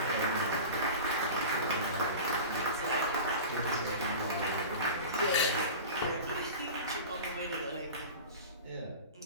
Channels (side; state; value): both; inverted; correlation -0.33